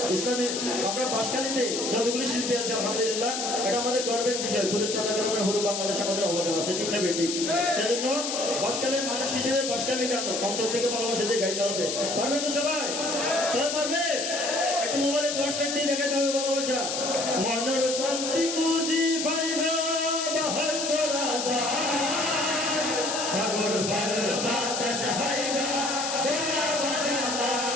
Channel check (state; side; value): noise; left; hiss, 3 dB below the sound